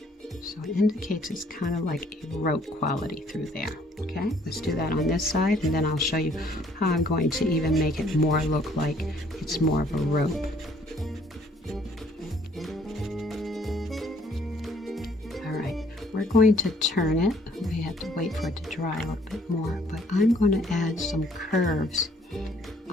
So it indicates it's kind of like a rope quality through there. Okay, let's do that on this side, and then I'll show you how I'm going to even make it more look like it's more of a rope. All right, we're going to turn it. We have to wait for it to dry a little bit more, but I'm going to add some curves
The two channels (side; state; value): both; normal; correlation 0.62